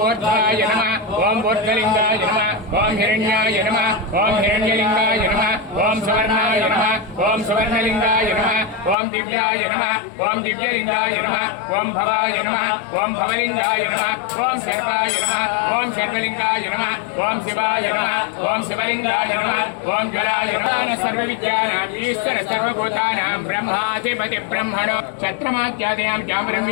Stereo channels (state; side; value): drops out; right; at 9.0 s